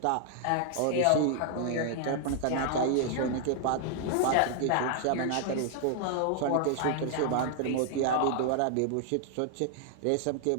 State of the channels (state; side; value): different; both; correlation 0.00